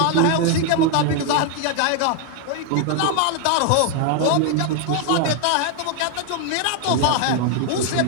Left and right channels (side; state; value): both; different; correlation 0.01